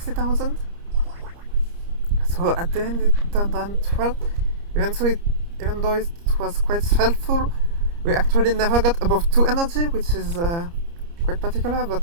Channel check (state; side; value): late; left; 29 ms